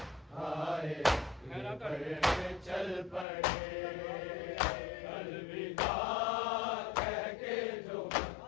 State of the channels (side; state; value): right; drops out; at 3.2 s